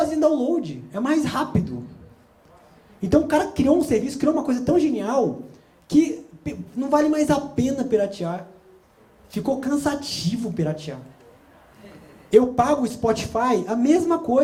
download. É mais rápido. Então o cara criou um serviço, criou uma coisa tão genial que não vale mais a pena piratear. Ficou cansativo piratear. Eu pago o Spotify, a mesma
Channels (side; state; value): both; identical; correlation 1.00